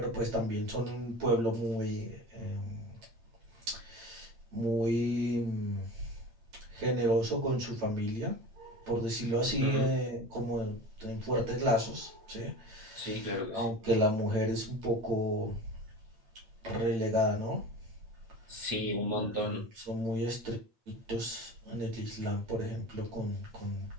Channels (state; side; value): late; left; 8.8 ms